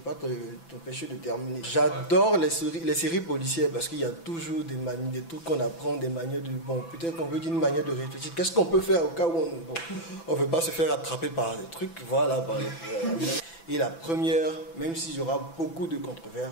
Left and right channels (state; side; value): late; right; 6.0 ms